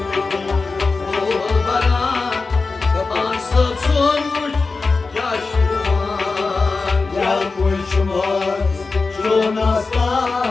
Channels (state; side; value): quieter; right; 4.1 dB